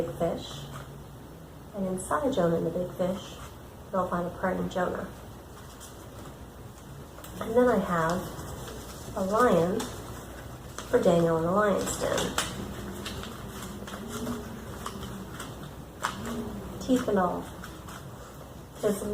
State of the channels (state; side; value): identical; both; correlation 1.00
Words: fish, and inside Jonah and the big fish, you'll find a praying Jonah. And then I have a lion for Daneil in the lion's den. Teeth and all. Kids